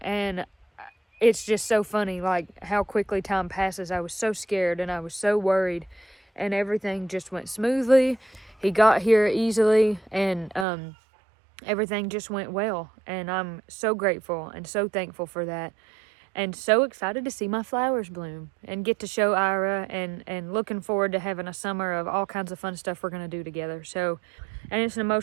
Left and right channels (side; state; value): left; drops out; at 10.7 s